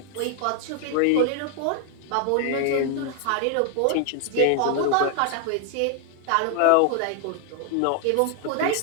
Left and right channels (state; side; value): different; both; correlation 0.00